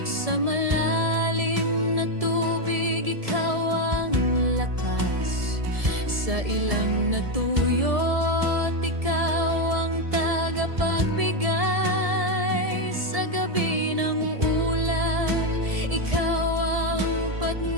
Sa malalim na tubig, ikaw ang lakas. Sa ilang natuyot, ikaw ang tagapagbigay. Sa gabi ng ulap, ikaw ang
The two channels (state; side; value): late; left; 1.7 ms